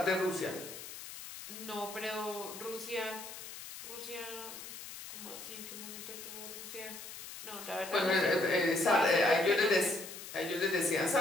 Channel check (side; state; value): left; noise; hiss, 11 dB below the sound